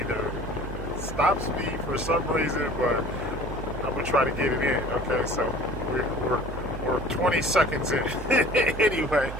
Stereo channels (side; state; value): right; noise; hum, 8 dB below the sound